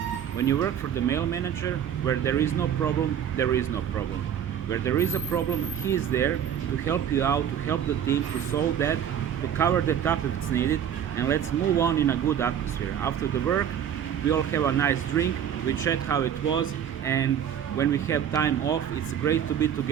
When you work for the male manager, where there is no problem, there is no problem. Where there is a problem, he is there to help you out, to help the team, to solve that, to cover that up if it's needed, and let's move on in a good atmosphere. After the work, we all have a nice drink, we chat how it was, and when we have time off, it's great to be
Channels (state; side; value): quieter; left; 9.2 dB